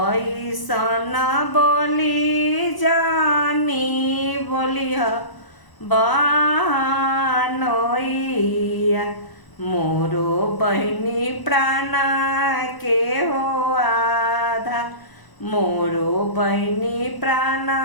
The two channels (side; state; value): right; late; 1.0 ms